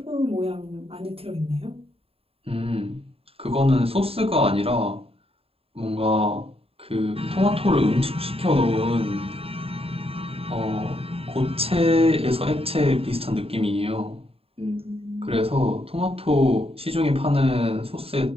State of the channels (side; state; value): left; late; 0.28 ms